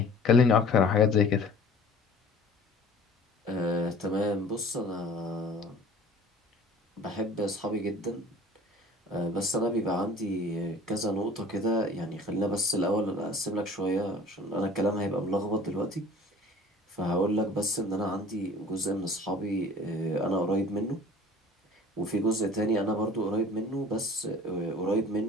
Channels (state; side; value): normal; both; correlation 0.46